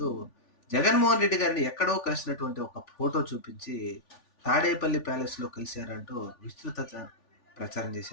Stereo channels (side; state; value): right; late; 3.4 ms